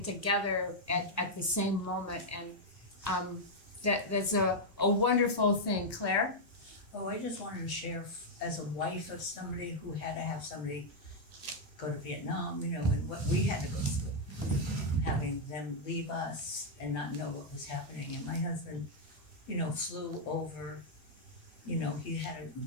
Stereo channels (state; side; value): normal; both; correlation -0.03